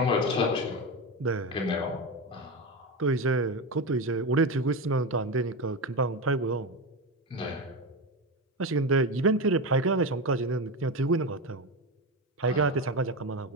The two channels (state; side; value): normal; both; correlation 0.17